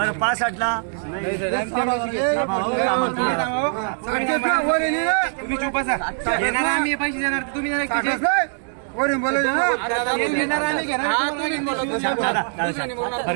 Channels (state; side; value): silent; left; digital silence